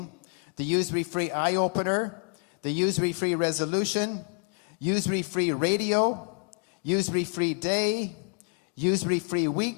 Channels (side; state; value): right; quieter; 39.5 dB